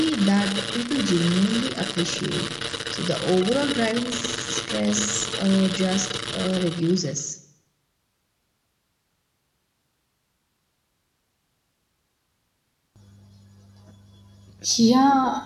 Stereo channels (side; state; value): both; identical; correlation 1.00